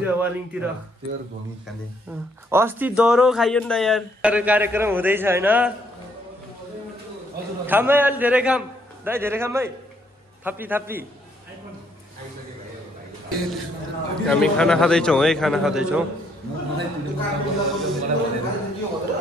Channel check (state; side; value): normal; both; correlation 0.70